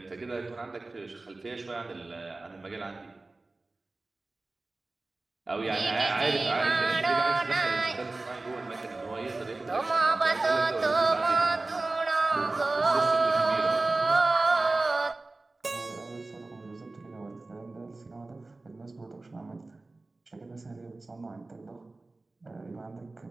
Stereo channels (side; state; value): left; quieter; 3.2 dB